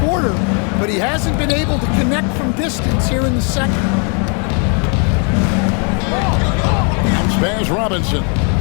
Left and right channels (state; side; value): quieter; right; 39.0 dB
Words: but he hasn't been able to connect from distance here in the second. Spurs Robinson.